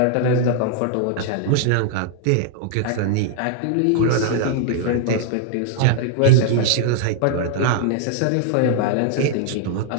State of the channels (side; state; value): both; different; correlation 0.00